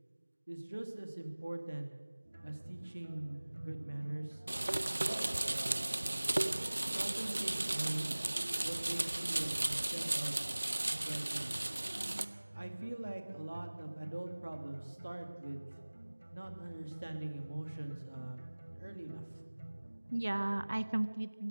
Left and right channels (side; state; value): both; inverted; correlation -1.00